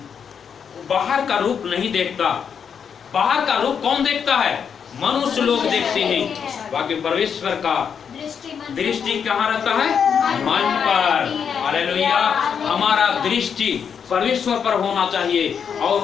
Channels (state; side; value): quieter; right; 7.2 dB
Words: बाहर का रूप नहीं देखता। बाहर का रूप कौन देखता है? मनुष्य लोग देखते हैं। बाकी परमेश्वर का दृष्टि कहाँ रहता है? मन पर। हालेलुया। हमारा दृष्टि परमेश्वर पर होना चाहिए। और